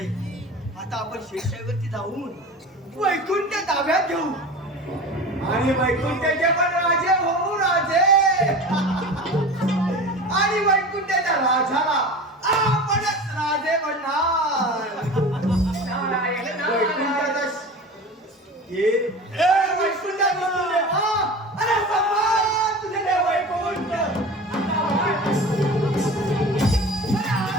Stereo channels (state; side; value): normal; both; correlation 0.34